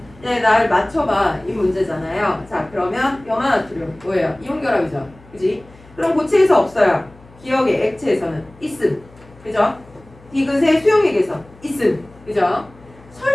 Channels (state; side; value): noise; left; hum, 25 dB below the sound